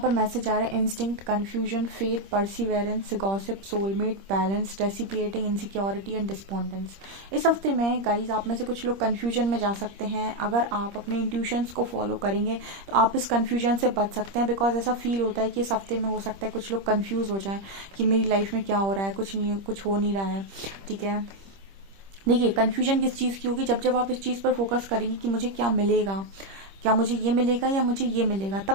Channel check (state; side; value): late; left; 26 ms